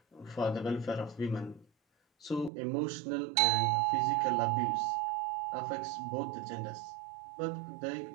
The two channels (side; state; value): left; drops out; at 2.5 s